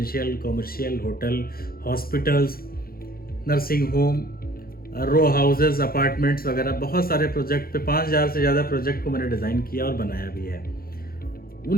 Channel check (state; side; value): late; right; 0.43 ms